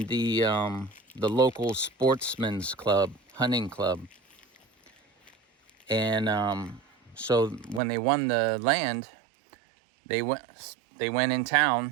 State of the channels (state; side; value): drops out; left; at 7.8 s